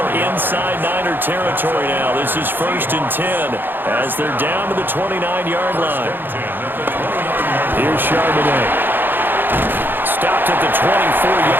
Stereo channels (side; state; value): left; late; 0.096 ms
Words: inside Niner territory now, this is 1st and 10 as they're down to the 29-yard line. Here's Charbonnet. Stopped at the